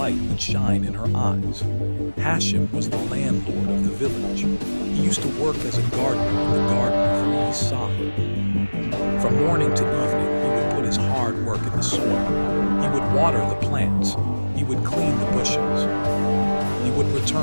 would shine in her eyes. Hashim was the landlord of the village. He used to work as a gardener in the garden of Rees Sahib. From morning to evening, he would put his hard work in the soil. He would water the plants. He would clean the bushes. He would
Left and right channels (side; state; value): both; inverted; correlation -1.00